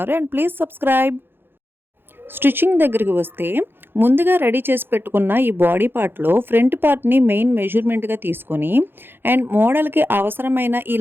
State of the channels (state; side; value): late; left; 0.10 ms